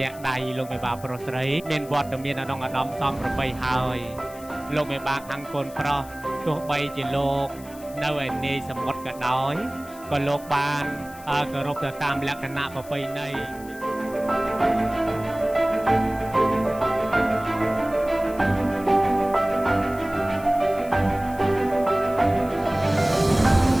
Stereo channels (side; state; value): left; noise; hiss, 20 dB below the sound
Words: ដៃលោកមេបាប្រុសស្រីមានវត្តមានអាដាមសំប្របីហើយលោកមេបាខាងកូនប្រុសទោះបីជាលោកនៅឯនាយសមុទ្រក៏ដោយក៏លោកបានគោរពទៅតាមលក្ខណៈប្រពៃណី